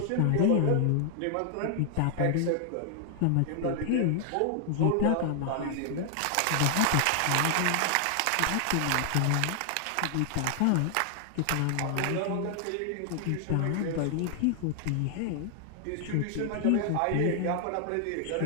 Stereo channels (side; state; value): both; different; correlation 0.00